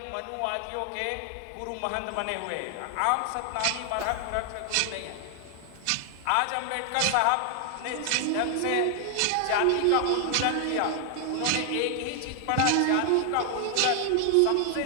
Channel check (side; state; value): both; different; correlation 0.00